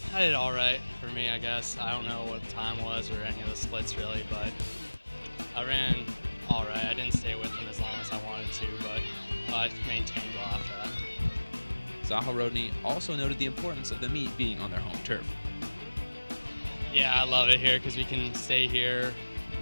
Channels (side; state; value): both; inverted; correlation -1.00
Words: I did all right for me, I guess. I don't know what the time was or any of the splits really, but I ran all right. I didn't stay with him as long as I wanted to, but I maintained well after that. Zaharodny also noted the importance of the meet being on their home turf. Yeah, I love it here because we can stay here,